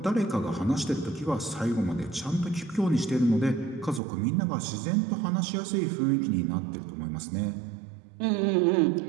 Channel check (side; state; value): left; drops out; at 4.0 s